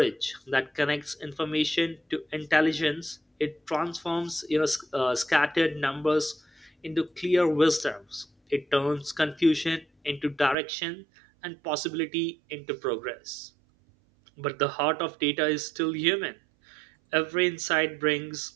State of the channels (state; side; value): drops out; left; at 10.6 s